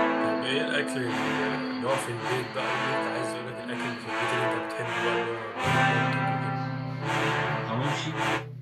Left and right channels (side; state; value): both; identical; correlation 1.00